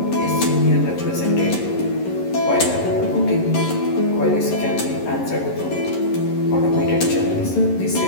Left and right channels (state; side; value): late; right; 11 ms